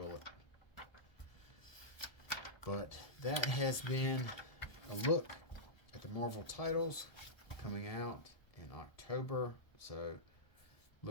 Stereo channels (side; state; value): right; late; 1.2 ms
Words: But that has been a look at the Marvel titles coming out in October. So